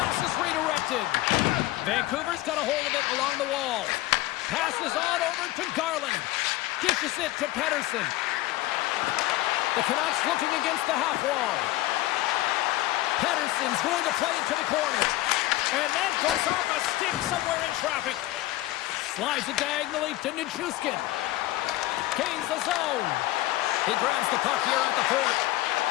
is redirected. Vancouver's got a hold of it along the wall. Passes on over to Garland. Dishes it to Pettersson. The Canucks looking against the half wall. Pettersson's going to play it to the corner. And that goes off a stick somewhere in traffic. Slides it diagonally to Nichushkin. Gains the zone. He grabs the puck here at the point.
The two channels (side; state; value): right; quieter; 17.4 dB